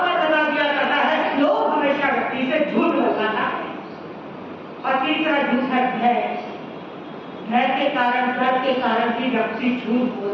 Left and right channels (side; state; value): both; identical; correlation 1.00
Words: लगा दिया करता है। लोग हमेशा व्यक्ति से झूठ लगाता है। और तीसरा झूठ है भय। भय के कारण, डर के कारण भी व्यक्ति झूठ